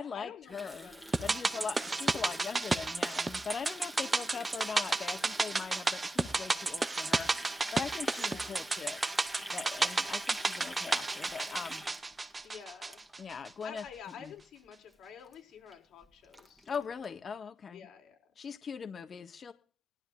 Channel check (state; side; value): normal; both; correlation 0.92